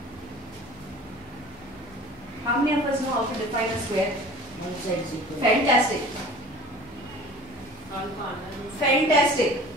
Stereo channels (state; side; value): normal; both; correlation 0.44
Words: How many of us know how to define a square? One side is equal. Fantastic. Fantastic.